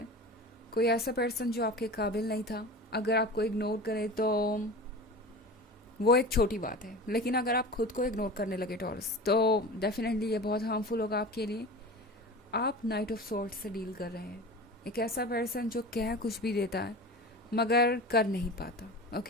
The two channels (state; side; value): normal; both; correlation 0.33